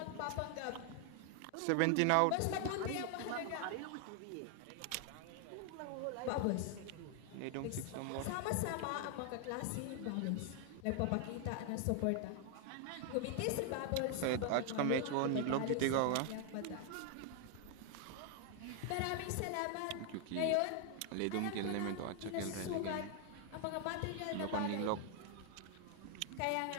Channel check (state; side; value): different; both; correlation 0.00